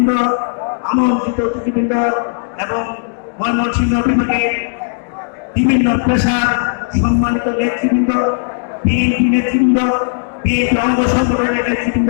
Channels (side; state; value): right; silent; digital silence